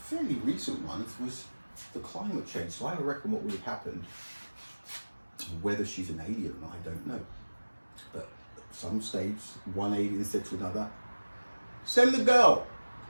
recent ones was the climate change. So I reckon what would have happened, whether she's an alien or not, I don't know. But at some stage, one alien said to another, send the girl,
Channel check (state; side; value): inverted; both; correlation -1.00